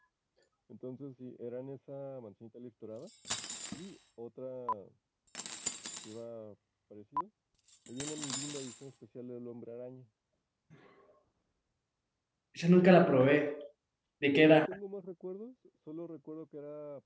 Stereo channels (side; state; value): both; identical; correlation 1.00